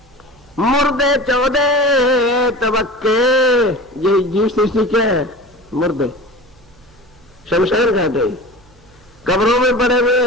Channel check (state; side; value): noise; right; hum, 29 dB below the sound